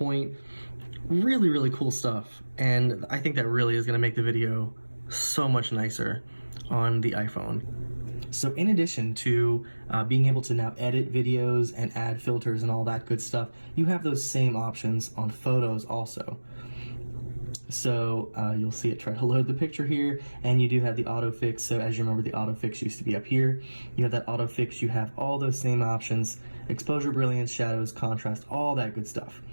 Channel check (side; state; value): both; inverted; correlation -1.00